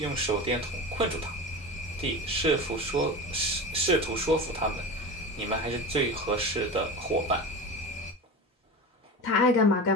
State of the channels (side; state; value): both; normal; correlation 0.29